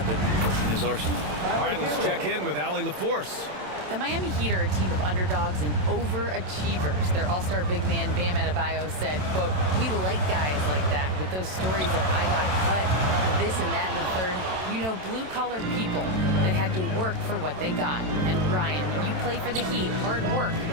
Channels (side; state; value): left; late; 27 ms